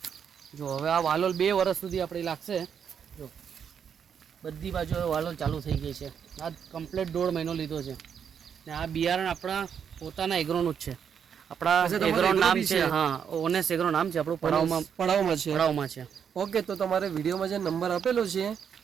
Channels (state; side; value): quieter; left; 7.6 dB